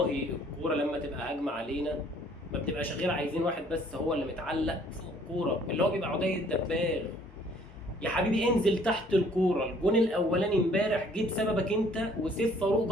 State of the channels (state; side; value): normal; both; correlation 0.59